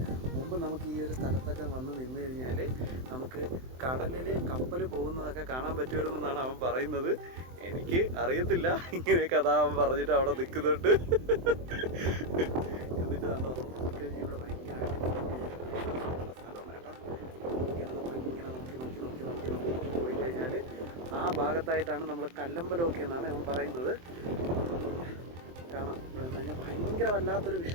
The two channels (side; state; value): left; late; 23 ms